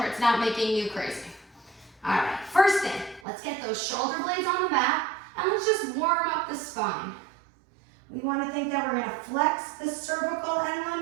it's not making you crazy. All right, first thing, let's get those shoulder blades on the mat and let's just warm up the spine. We want to think that we're going to flex the cervical and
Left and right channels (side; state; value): left; drops out; at 3.2 s